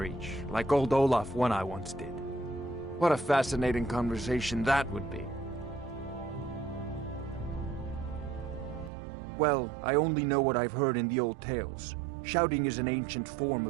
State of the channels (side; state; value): left; drops out; at 8.9 s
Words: like old Olaf one I once did. What a fascinating conversation that would be. Well, I only know what I've heard in the old tales. Shouting is an ancient form